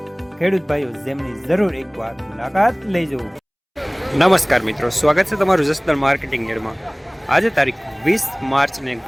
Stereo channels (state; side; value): identical; both; correlation 1.00